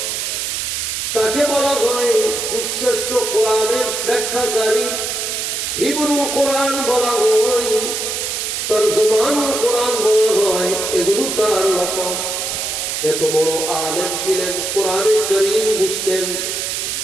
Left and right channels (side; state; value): right; noise; hiss, 2 dB below the sound